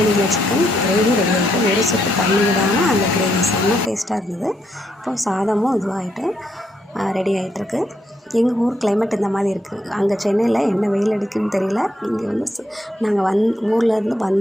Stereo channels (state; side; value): normal; both; correlation 0.76